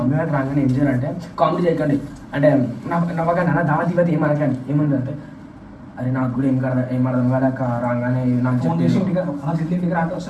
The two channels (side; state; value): both; identical; correlation 1.00